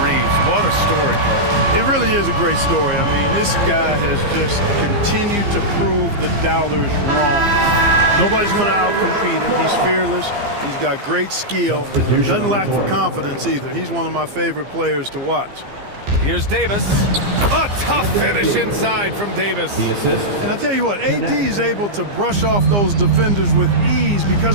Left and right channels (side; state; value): left; late; 15 ms